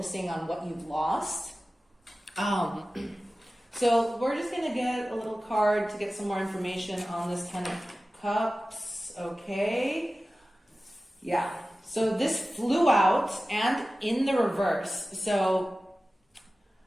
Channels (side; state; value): both; normal; correlation 0.96